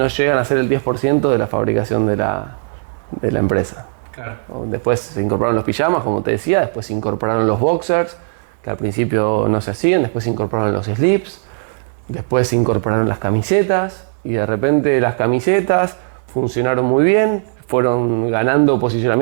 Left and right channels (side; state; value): left; silent; 68 dB below the other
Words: llegan a ser el 10% de la fabricación de la empresa. Claro. Después se incorporaron los pijamas, como te decía, después se incorporaron los boxers, que al principio no se hacían, después se incorporaron los slips, después se incorporaron las camisetas, y de repente las camisetas funcionaron muy bien, fueron ganando